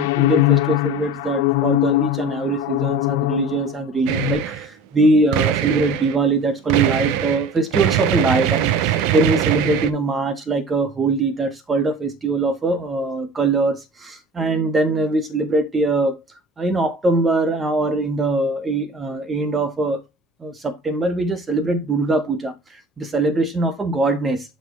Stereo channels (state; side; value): normal; both; correlation 0.40